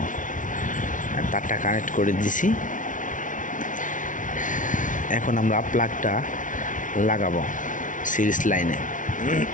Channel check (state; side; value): late; right; 0.38 ms